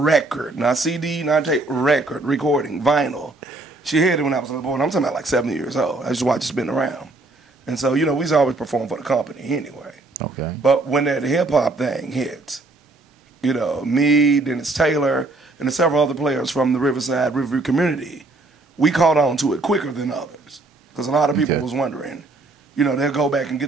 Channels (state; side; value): quieter; left; 3.1 dB